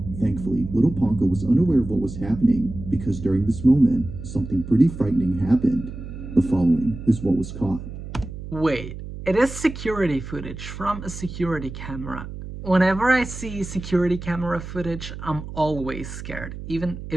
Thankfully, little Ponko was unaware of what was happening because during this moment, something pretty frightening happened. The following is what was caught. Wait, it is security footage from a security camera. Whenever I see security camera footage, I'm always scared, even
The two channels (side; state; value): right; noise; hum, 10 dB below the sound